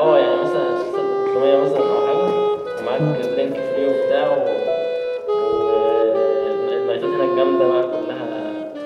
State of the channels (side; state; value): both; identical; correlation 1.00